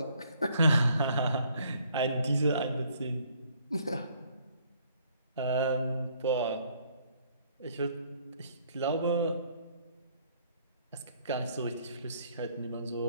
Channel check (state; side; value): inverted; both; correlation -0.64